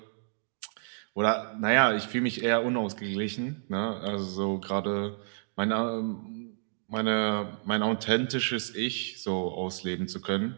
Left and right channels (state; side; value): silent; left; digital silence